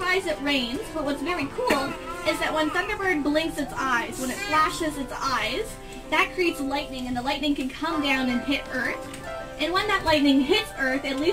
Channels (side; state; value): both; identical; correlation 1.00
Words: it rains. But what's very cool is that when Thunderbird blinks its eyes, when it flashes its eyes, that creates lightning, and the lightning can come down and hit Earth. And when that lightning hits Earth, it